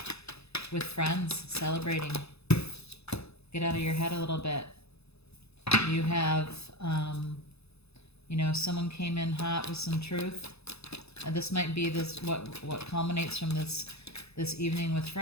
with friends, celebrating. Get out of your head a little bit. You have, someone came in hot with some truth. This might be what culminates from this evening with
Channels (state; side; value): late; right; 0.79 ms